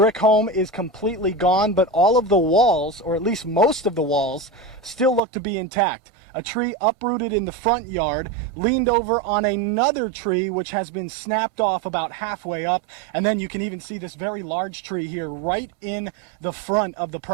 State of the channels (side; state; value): left; drops out; at 5.2 s